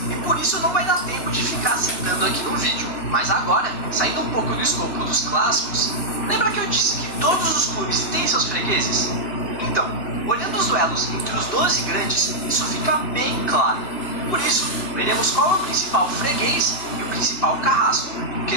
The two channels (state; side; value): late; right; 3.0 ms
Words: e por isso não vai dar tempo de ficar citando aqui no vídeo. Mas agora, saindo um pouco do escopo dos clássicos, lembra que eu disse que todos os clubes têm seus fregueses? Então, olhando os duelos entre os 12 grandes, isso fica bem claro. Por isso, veremos qual é o principal freguês e o principal carrasco, em